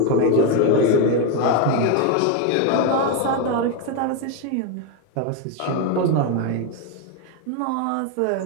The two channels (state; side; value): different; both; correlation 0.01